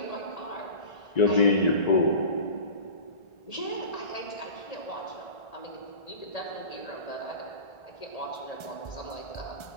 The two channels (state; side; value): late; right; 1.3 ms